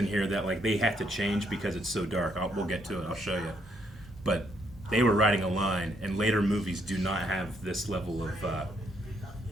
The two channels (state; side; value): normal; both; correlation 0.73